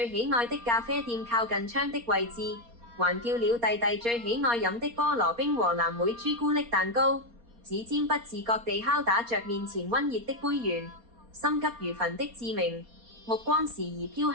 喜愛的咖啡店靠近窗的位置，還叫了弟弟最喜愛飲的菠蘿冰和藍莓朱古力蛋糕，指尖不自覺地敲打着面前溫熱的杯緣。心急如焚的志明，目光時而飄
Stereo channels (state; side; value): late; left; 4.3 ms